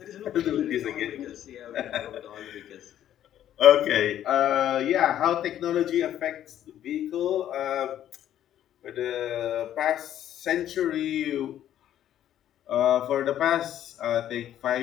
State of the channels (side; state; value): right; quieter; 11.3 dB